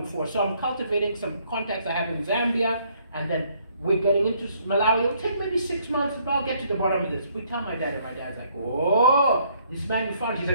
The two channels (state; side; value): inverted; both; correlation -0.66